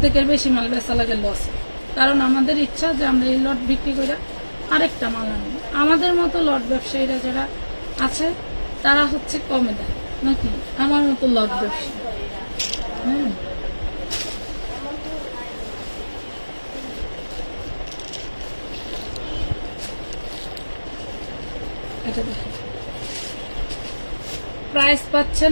বেশি মাল বেচা লাগে লস, কারণ আমাদের ইচ্ছা যে আমরা এই লট বিক্রি করে আরেকটা মাল আনবো। আমাদের মতো লট ব্যবসায়ীরা যারা আছে তারা হচ্ছে কমে দেয়, নাকি আমার মতো লট ব্যবসায়ী। এটা দেখেন, প্রাইস পাচ্ছেন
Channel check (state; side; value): inverted; both; correlation -1.00